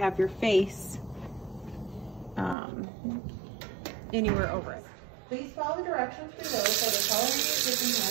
your face anywhere over it. Please follow the directions below for the culinary cooking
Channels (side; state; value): left; drops out; at 2.6 s